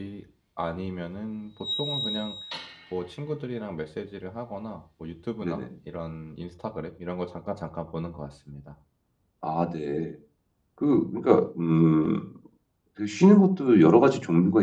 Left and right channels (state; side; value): identical; both; correlation 1.00